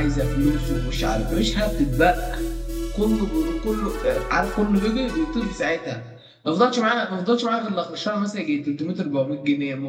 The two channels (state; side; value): identical; both; correlation 1.00